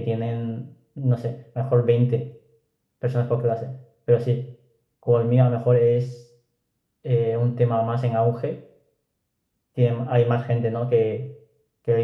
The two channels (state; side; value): identical; both; correlation 1.00